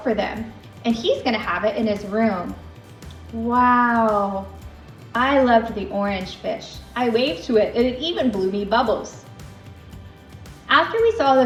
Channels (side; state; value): both; identical; correlation 1.00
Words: for them. And he's gonna have it in his room. Wow, I loved the orange fish. I waved to it and it even blew me bubbles. After we saw